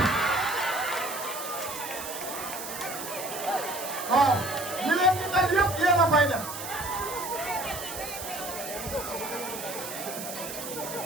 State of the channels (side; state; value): right; noise; hiss, 8 dB below the sound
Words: waaw li leen di dal yëpp yéen a koy def